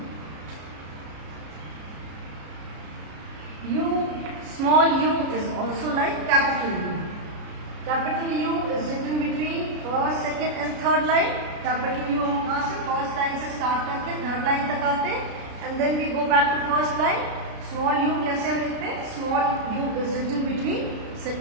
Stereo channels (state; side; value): late; left; 33 ms